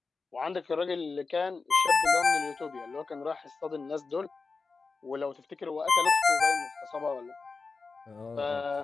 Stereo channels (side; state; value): right; quieter; 4.3 dB